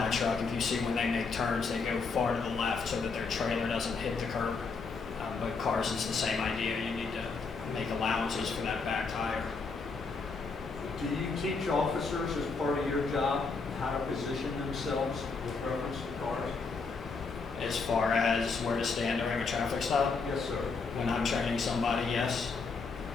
If you see when they make turns, they go far to the left so that their trailer doesn't hit the curb. But cars, it's the same idea. You need to make allowances for that back tire. Do you teach officers as part of your job how to position themselves with reference to cars? As far as where to stand during a traffic stop? Yes, sir. When I'm training somebody, yes.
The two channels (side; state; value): right; quieter; 4.6 dB